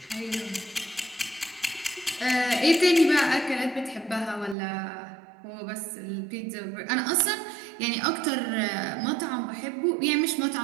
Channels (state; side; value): drops out; left; at 4.5 s